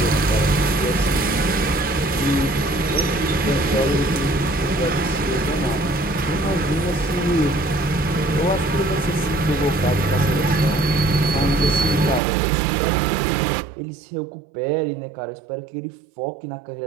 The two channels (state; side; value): drops out; left; at 12.2 s